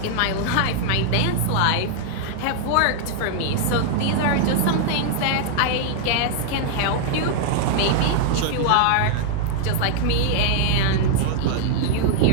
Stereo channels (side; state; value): both; different; correlation -0.01